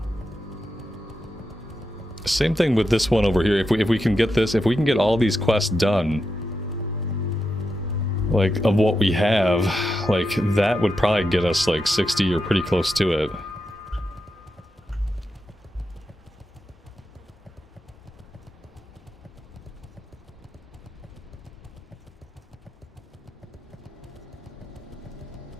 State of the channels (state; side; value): normal; both; correlation 0.87